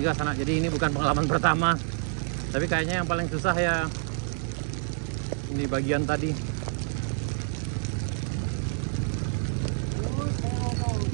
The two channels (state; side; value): silent; left; 59 dB below the other